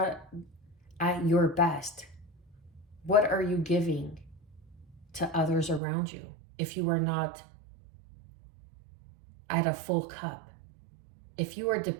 at your best, what are you giving to others around you if you are not at a full cup? If you are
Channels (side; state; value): left; drops out; at 5.8 s